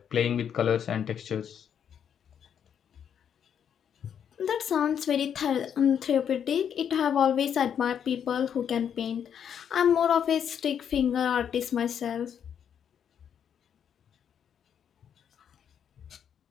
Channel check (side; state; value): right; quieter; 8.4 dB